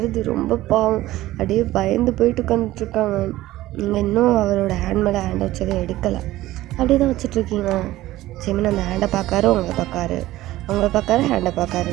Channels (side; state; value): left; quieter; 16.1 dB